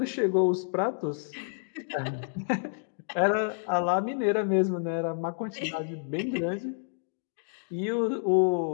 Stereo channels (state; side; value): silent; right; digital silence